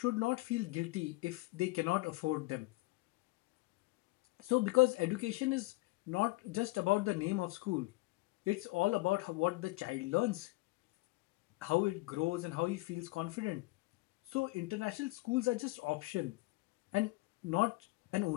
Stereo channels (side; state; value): right; quieter; 22.2 dB